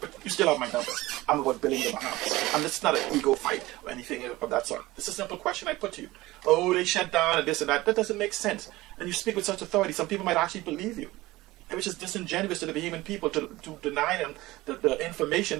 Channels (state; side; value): quieter; left; 18.9 dB